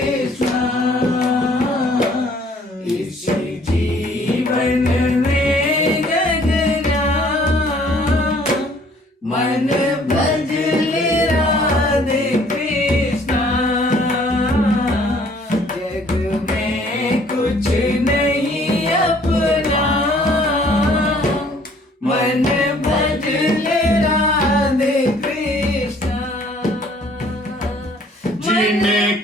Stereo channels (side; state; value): both; normal; correlation 0.58